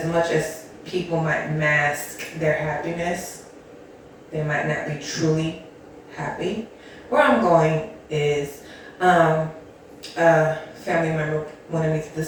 much as people might mask their happiness, they might not be truly happy. Where I'm going is a family member wanted me to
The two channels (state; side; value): identical; both; correlation 1.00